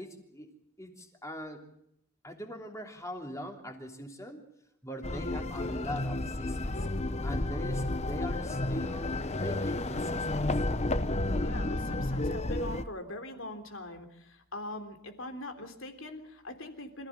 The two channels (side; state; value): both; normal; correlation 0.61